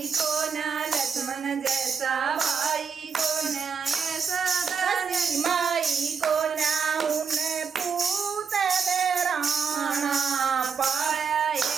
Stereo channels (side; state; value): left; quieter; 6.1 dB